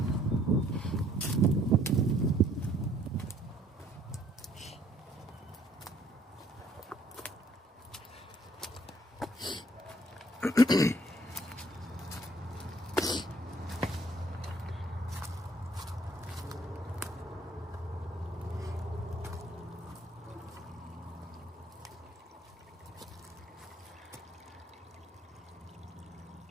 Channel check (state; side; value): normal; both; correlation 0.62